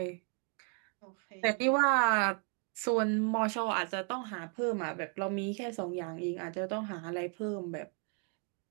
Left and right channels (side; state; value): left; quieter; 39.8 dB